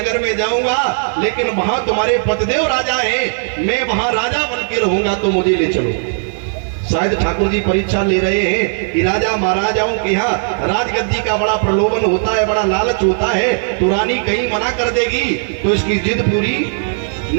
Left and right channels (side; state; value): left; silent; 55 dB below the other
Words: में जाऊंगा, लेकिन वहां तुम्हारे पतिदेव राजा हैं, मैं वहां राजा बन के रहूंगा, तो मुझे ले चलो। शायद ठाकुर जी परीक्षा ले रहे हैं कि राजा महाराजाओं के यहाँ राजगद्दी का बड़ा प्रलोभन होता है, बड़ा लालच होता है, तो रानी कहीं मना कर देगी तो इसकी जिद पूरी